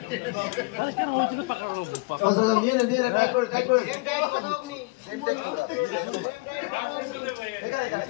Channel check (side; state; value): right; quieter; 28.0 dB